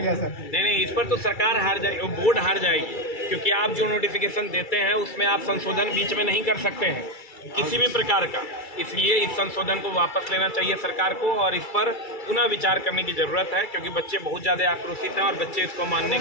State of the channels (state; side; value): late; right; 2.3 ms